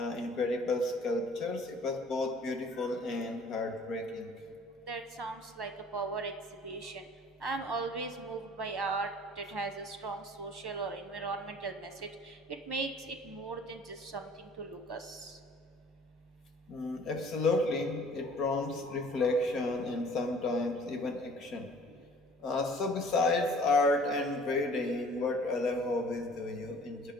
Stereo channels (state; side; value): normal; both; correlation 0.51